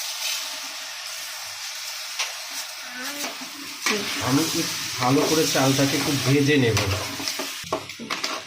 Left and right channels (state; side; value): identical; both; correlation 1.00